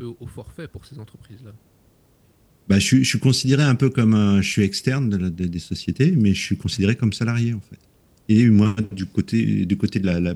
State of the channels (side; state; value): both; identical; correlation 1.00